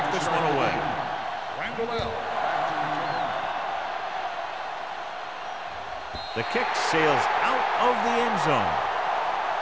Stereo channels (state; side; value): identical; both; correlation 1.00